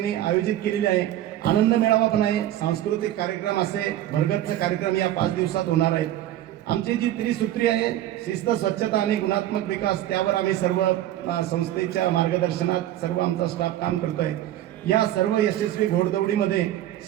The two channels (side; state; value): left; quieter; 13.0 dB